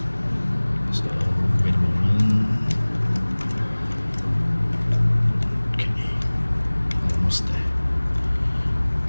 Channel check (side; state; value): both; inverted; correlation -1.00